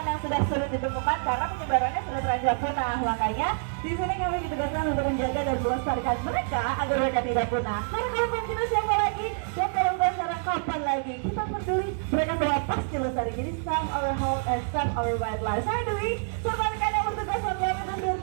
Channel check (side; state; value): left; silent; digital silence